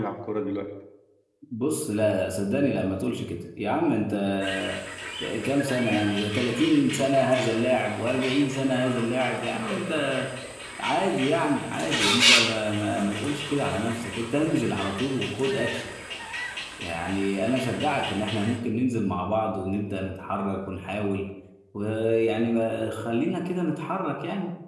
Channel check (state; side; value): identical; both; correlation 1.00